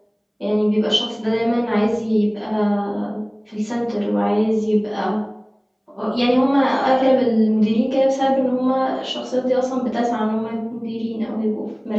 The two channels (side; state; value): both; identical; correlation 1.00